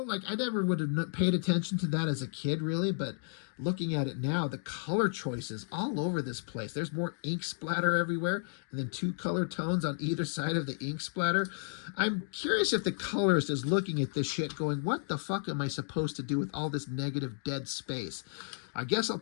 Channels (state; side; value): silent; right; digital silence